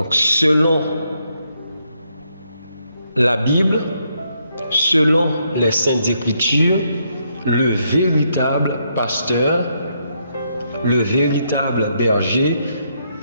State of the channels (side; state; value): both; inverted; correlation -0.76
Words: selon la Bible, selon les Saintes Écritures, le véritable pasteur, le véritable berger,